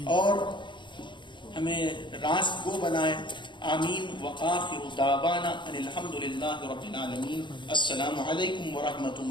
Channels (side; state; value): right; late; 0.23 ms